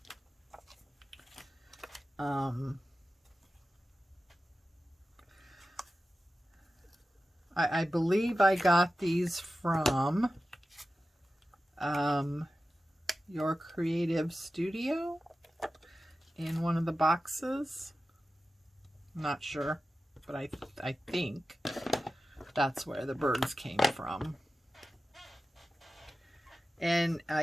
I believe I got these from Your Creative Studio in one of the boxes. I'm not sure, but I think that's where the birds came from. And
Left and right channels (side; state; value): both; normal; correlation 0.94